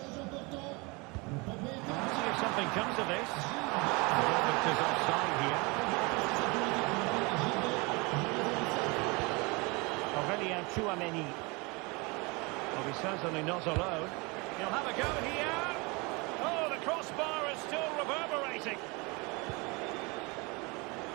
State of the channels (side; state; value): left; quieter; 27.4 dB